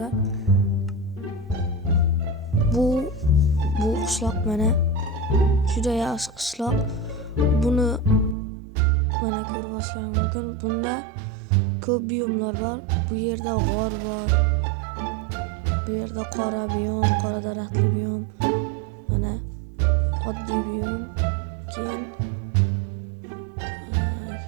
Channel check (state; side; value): drops out; left; at 8.3 s